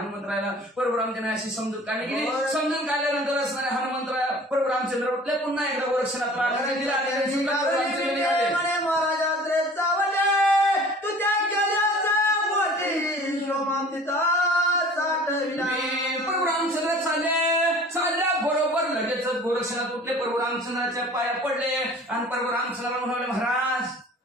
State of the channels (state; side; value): normal; both; correlation 0.46